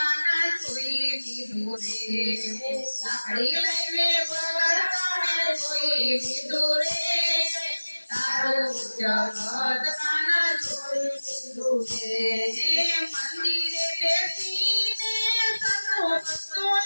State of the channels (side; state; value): both; inverted; correlation -1.00